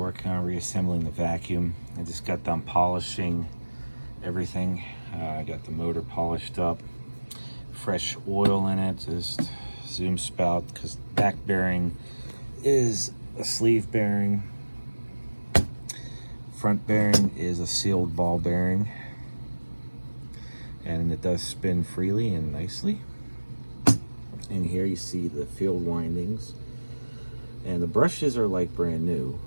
on reassembling the vacuum. I just got done polishing everything. I got the motor polished up. Fresh oil in it, just zoom spout, because back bearing is a sleeve bearing. Front bearing is a sealed ball bearing. And it does spin freely and nicely. And here you see the field windings. And the brushes are like brand new.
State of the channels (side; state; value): both; inverted; correlation -1.00